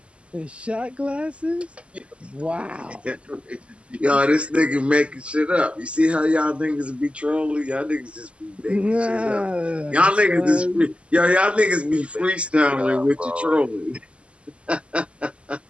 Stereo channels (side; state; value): left; late; 0.057 ms